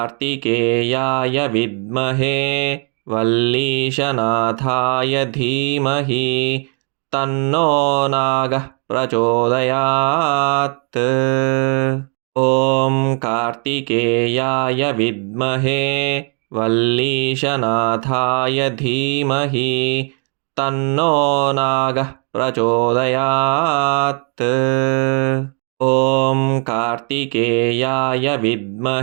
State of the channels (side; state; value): left; quieter; 38.9 dB